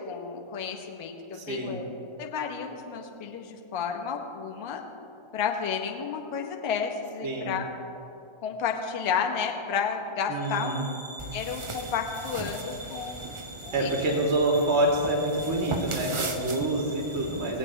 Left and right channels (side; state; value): left; late; 1.4 ms